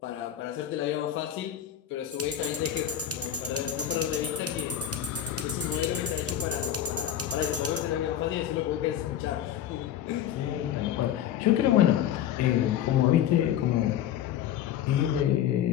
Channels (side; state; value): right; quieter; 10.6 dB